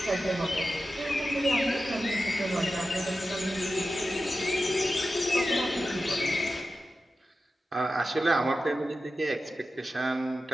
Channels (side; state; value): both; normal; correlation 0.92